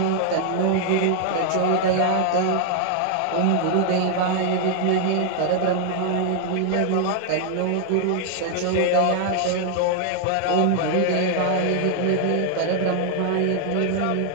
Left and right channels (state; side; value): different; both; correlation 0.00